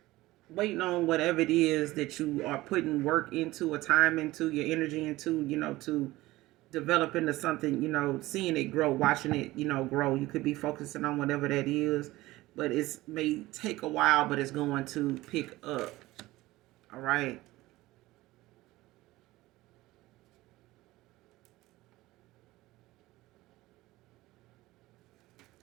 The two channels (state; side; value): quieter; left; 18.3 dB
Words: waiting on whatever it is that you are putting work into, or time into, your energy into, you know, to develop into something, you know, seeing it grow, watching it, you know, grow. You could be focusing on whatever that is, but it may take a while, but it's going to pick up. All right.